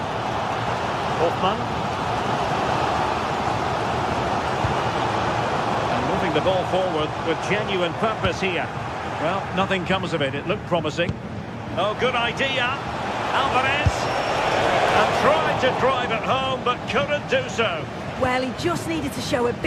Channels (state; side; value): identical; both; correlation 1.00